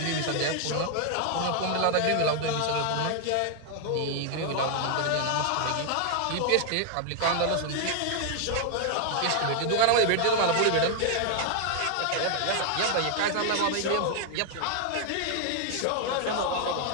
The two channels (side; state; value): both; different; correlation 0.00